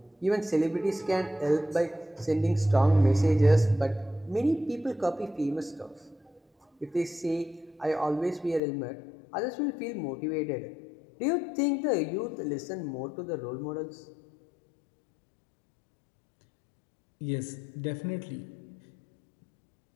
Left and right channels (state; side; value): drops out; right; at 8.6 s